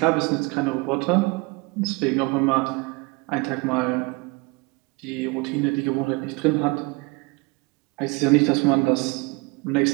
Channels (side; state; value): left; quieter; 27.3 dB